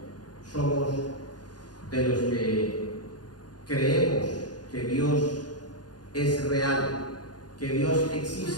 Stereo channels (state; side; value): late; right; 0.69 ms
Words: somos de los que creemos que Dios es real, que Dios